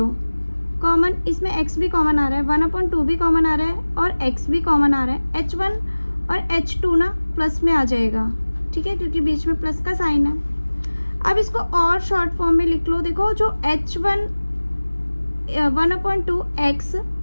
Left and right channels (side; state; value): both; inverted; correlation -1.00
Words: कॉमन, इसमें x भी कॉमन आ रहा है, 1/2 भी कॉमन आ रहा है, और x भी कॉमन आ रहा है। h1 और h2 ना प्लस में आ जाएगा। ठीक है, क्योंकि बीच में प्लस का साइन है। अब इसको और शॉर्ट फॉर्म में लिख लो। देखो जो h1 1/2 x,